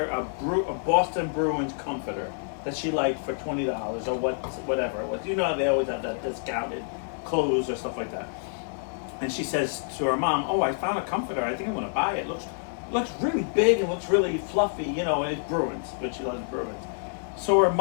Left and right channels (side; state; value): right; silent; 60 dB below the other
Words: a Boston Bruins comforter that she liked for $20 or whatever it was. You know they always have that discounted clothes or stuff like that. And she says to her mom, "Oh, I found a comforter. I think I want to buy it. Looks really big and looks really fluffy, you know, and it's Bruins, but she loves Bruins." So her